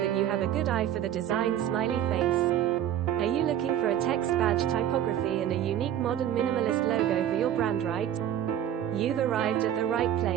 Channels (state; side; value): quieter; left; 10.7 dB